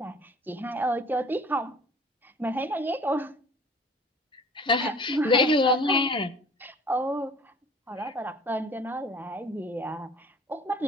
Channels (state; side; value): normal; both; correlation 0.49